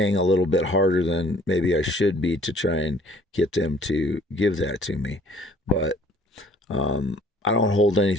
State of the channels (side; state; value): both; normal; correlation 0.56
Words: a little bit harder than maybe I should be to try and get them to give that to me. But I don't hold